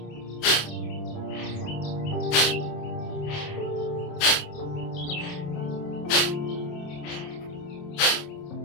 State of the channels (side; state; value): right; late; 28 ms